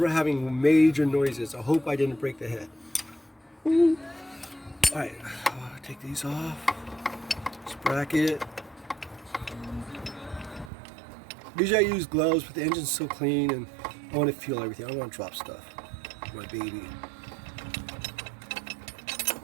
having major noises. I hope I didn't break the head. All right, take these off. This bracket. Usually I use gloves, but the engine's so clean and I want to feel everything. I don't want to drop stuff. My baby.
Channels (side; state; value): left; drops out; at 10.7 s